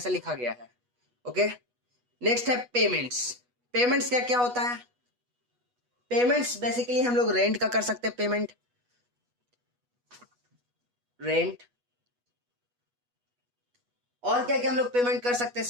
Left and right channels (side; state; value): left; late; 8.2 ms